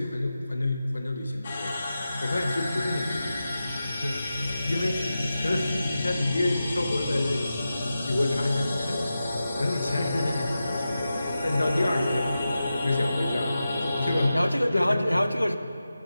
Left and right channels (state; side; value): inverted; both; correlation -0.92